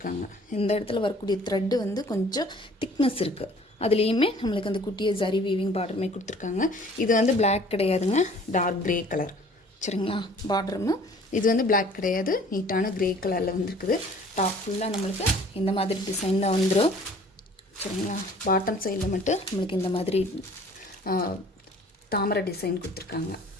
இந்த இடத்துல வரக்கூடிய த்ரெட்டு வந்து கொஞ்சம் திக்னஸ் இருக்குது. அதுலேயுமே நம்மளுக்கு அந்த குட்டியை ஜரி வீவிங் பார்டருமே கொடுத்துருக்காங்க. இது வந்து பிளாக் கிடையாதுங்க, டார்க் க்ரே கலர். சரிங்களா? பார்டருமே இது வந்து பிளாக் கிடையாது, நீட்டான க்ரே கலரில் வந்துருக்குது. டாப் ஃபுல்லாக நம்மளுக்கு இந்த மாதிரி டிசைனில் வந்துடும். சரிங்களா? பாட்டம் சைடில் மட்டும் நம்மளுக்கு இந்த மாதிரி தாமரை டிசைன் கொடுத்துருக்காங்க.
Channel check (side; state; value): both; normal; correlation 0.52